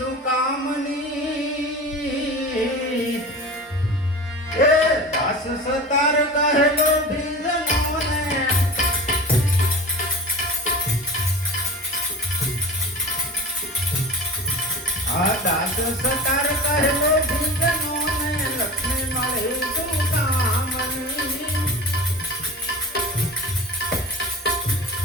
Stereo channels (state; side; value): normal; both; correlation 0.34